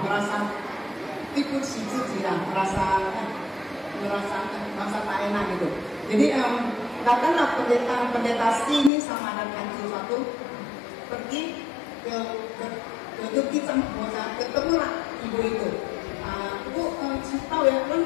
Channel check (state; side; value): drops out; right; at 8.9 s